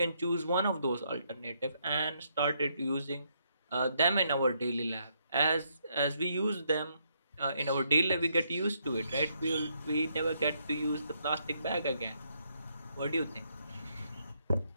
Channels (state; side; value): inverted; both; correlation -0.74